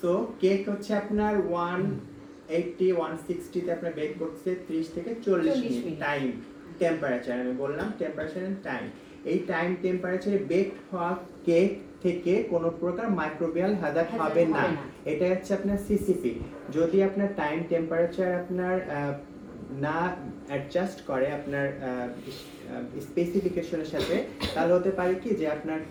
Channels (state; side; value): identical; both; correlation 1.00